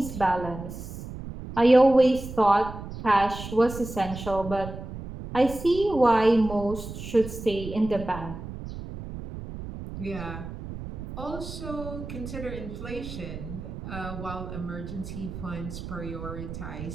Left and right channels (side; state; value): right; noise; rumble, 10 dB below the sound